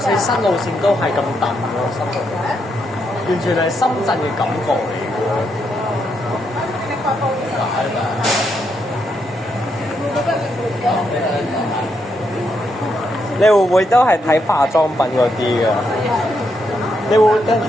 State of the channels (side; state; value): both; normal; correlation 0.79